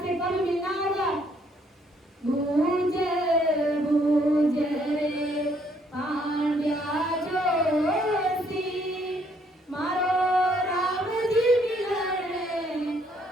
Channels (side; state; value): both; normal; correlation 0.68